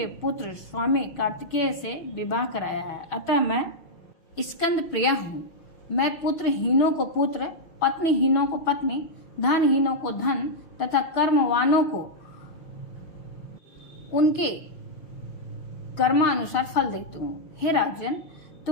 पुत्र स्वामी कार्तिकेय से विवाह कराया है, अतः मैं स्कंद प्रिया हूँ। मैं पुत्रहीनों को पुत्र, पत्नीहीनों को पत्नी, धनहीनों को धन तथा कर्मवानों को उनके कर्मानुसार फल देती हूँ। हे राजन,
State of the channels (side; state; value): right; late; 6.6 ms